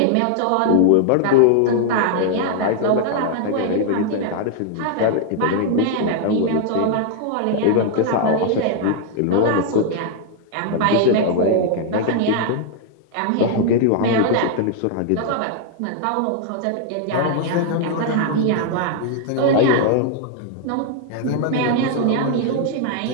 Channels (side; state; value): both; different; correlation 0.00